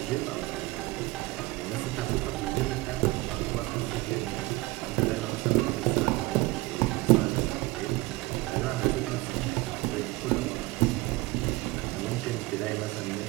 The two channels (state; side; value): quieter; left; 21.4 dB